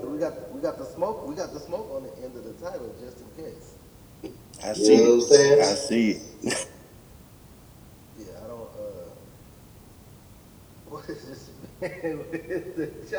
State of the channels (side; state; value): both; identical; correlation 1.00